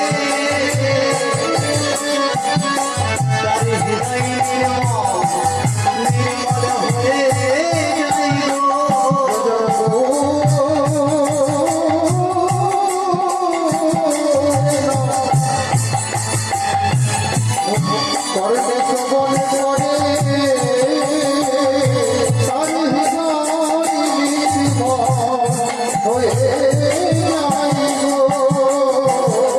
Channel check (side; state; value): both; identical; correlation 1.00